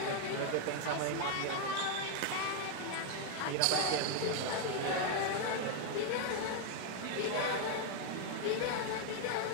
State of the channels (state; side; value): different; both; correlation 0.00